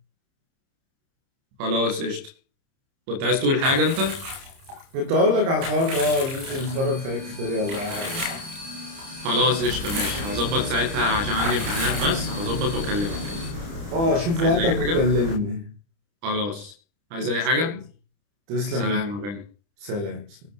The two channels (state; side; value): late; left; 30 ms